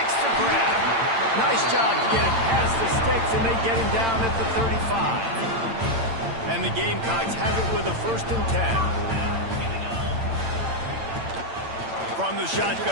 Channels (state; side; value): late; left; 8.8 ms